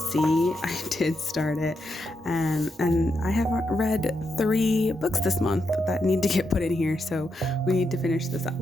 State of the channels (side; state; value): both; normal; correlation 0.83